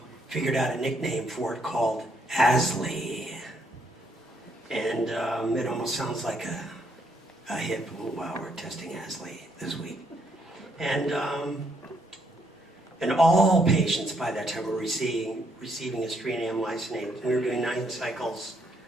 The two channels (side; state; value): both; normal; correlation 0.73